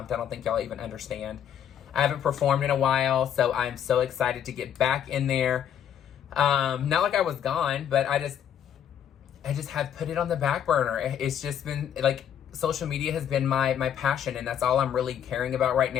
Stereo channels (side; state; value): right; quieter; 9.3 dB